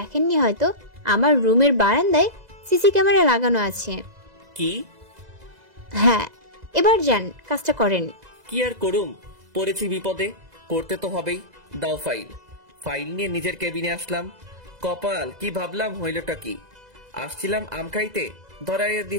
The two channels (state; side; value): late; left; 2.0 ms